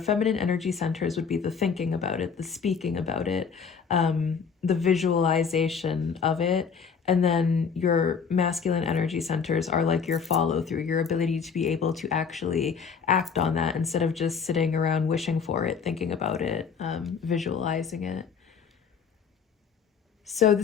energy centers would be the thinking about it, the speaking about it, the visualization of it. And then your masculine energy centers are like your follow through, your ability to be able to actually act on that instead of just sitting around wishing for it, thinking about it, visualizing it. So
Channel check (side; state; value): right; quieter; 6.2 dB